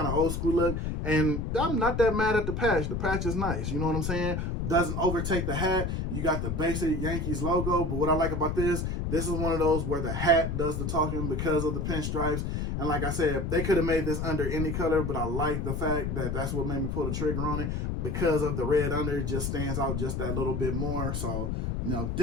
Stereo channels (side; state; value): left; noise; rumble, 2 dB below the sound